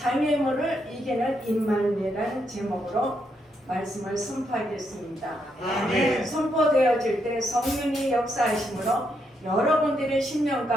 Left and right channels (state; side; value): normal; both; correlation 0.78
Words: 이기는 임마누엘이라는 제목으로 말씀을 선포하겠습니다. 아멘. 선포되어질 때 성령이 역사하심으로 여러분들의 심령